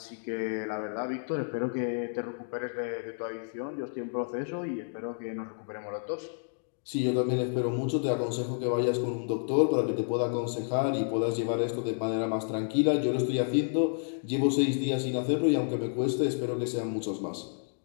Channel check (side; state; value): right; silent; digital silence